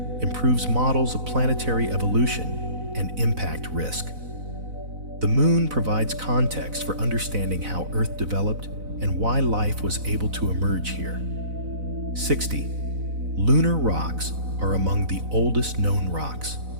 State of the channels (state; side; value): late; left; 4.0 ms